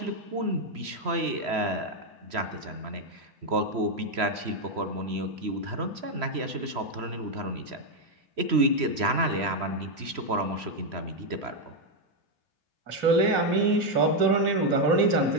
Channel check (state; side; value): late; left; 3.0 ms